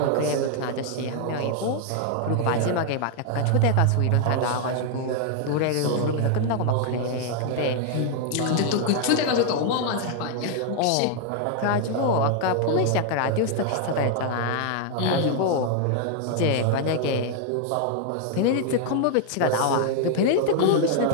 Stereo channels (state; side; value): different; both; correlation 0.00